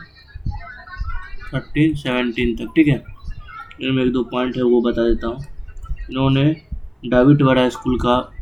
1317 तक, ठीक है। इनमें 1-2 पॉइंट है वो बता देता हूँ। इन्होंने डाविड वाड़ा स्कूल का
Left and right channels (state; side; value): identical; both; correlation 1.00